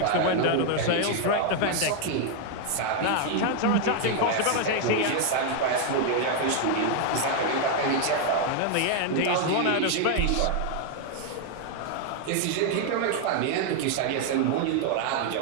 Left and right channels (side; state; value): both; different; correlation 0.00